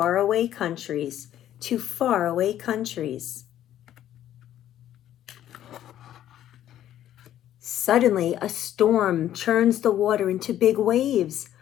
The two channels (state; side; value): quieter; right; 11.7 dB